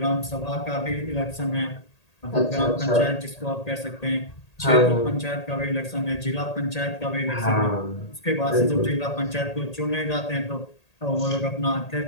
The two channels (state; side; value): late; right; 1.8 ms